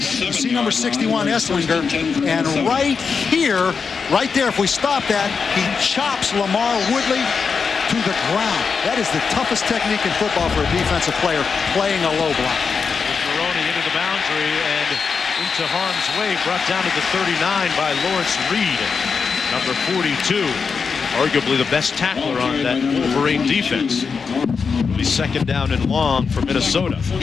see number 61, Esslinger, and right here, right there, if we stop that, he chops Lamar Woodley to the ground. That is the toughest technique in football for a defensive player, playing a low block. With Maroney into the boundary and into harm's way, brought down to the 39 by Lawrence Reed, number 42, arguably the best tackler on that Wolverine defense. It'll be 2nd down and long for Minnesota.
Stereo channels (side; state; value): right; quieter; 5.5 dB